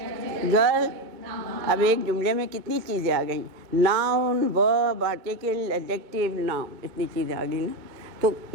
girl. अब एक जुमले में कितनी चीज़ें आ गई? Noun, verb, article, adjective, noun, इतनी चीज़ें आ गई ना। तो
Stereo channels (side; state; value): left; late; 2.1 ms